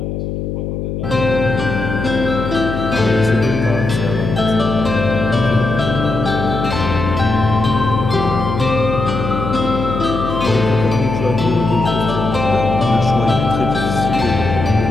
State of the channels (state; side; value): noise; left; hum, 4 dB below the sound